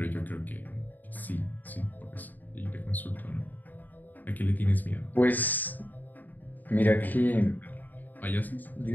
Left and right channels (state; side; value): late; right; 0.085 ms